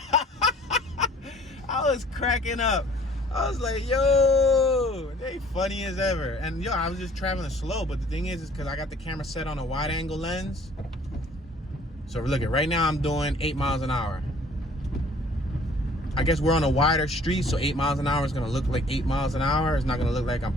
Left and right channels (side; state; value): both; normal; correlation 0.54